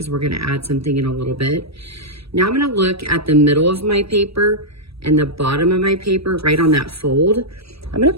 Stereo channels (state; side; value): late; left; 0.77 ms